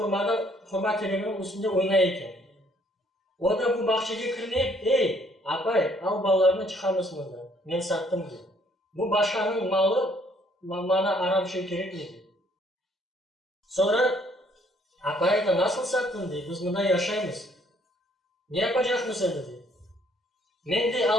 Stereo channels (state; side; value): normal; both; correlation 0.64